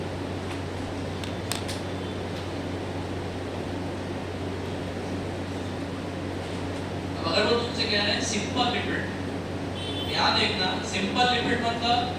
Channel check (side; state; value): both; identical; correlation 1.00